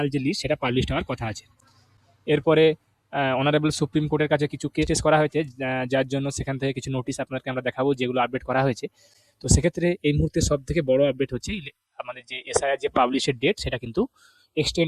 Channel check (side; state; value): both; identical; correlation 1.00